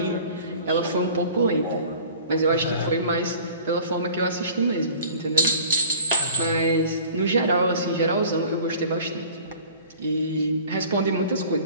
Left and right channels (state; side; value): inverted; both; correlation -0.47